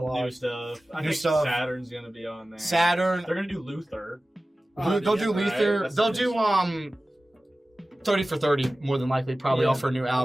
New stuff. I New think stuff. Saturn's gonna be on there. Saturn. They're gonna do Luther. They'll do right? Luther. That's They'll the do 30 for 30 more than likely, probably off her new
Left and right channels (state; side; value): normal; both; correlation 0.96